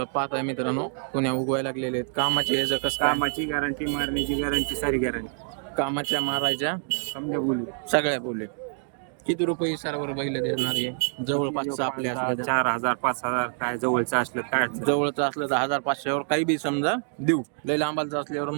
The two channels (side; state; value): left; silent; 61 dB below the other